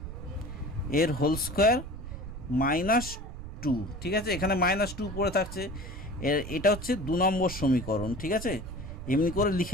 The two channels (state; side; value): noise; right; rumble, 10 dB below the sound